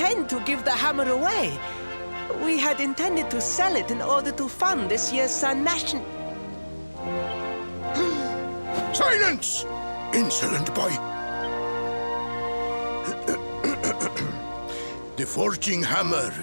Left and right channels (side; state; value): both; inverted; correlation -1.00